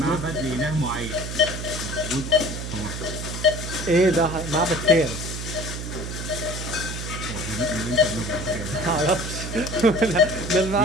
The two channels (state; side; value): noise; right; hum, 6 dB below the sound